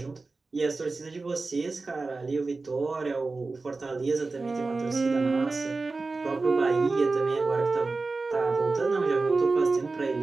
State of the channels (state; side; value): quieter; left; 3.7 dB